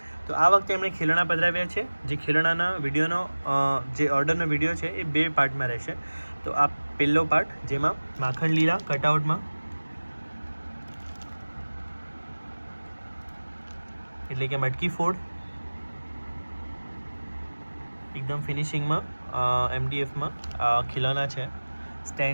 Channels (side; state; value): both; inverted; correlation -1.00